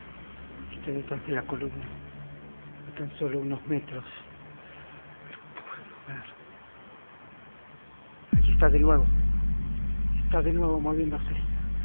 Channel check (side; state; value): both; inverted; correlation -1.00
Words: Está detrás de la columna, a tan solo unos metros. Pero puedo ver. Aquí está de nuevo